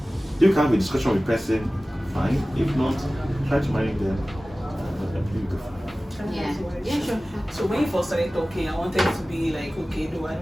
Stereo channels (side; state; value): both; normal; correlation 0.97